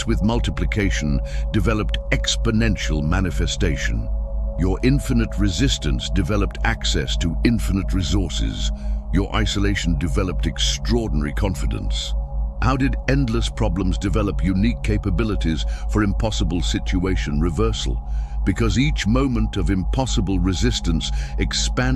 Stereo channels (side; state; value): both; identical; correlation 1.00